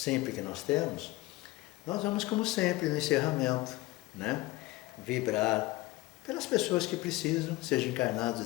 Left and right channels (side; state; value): right; quieter; 19.0 dB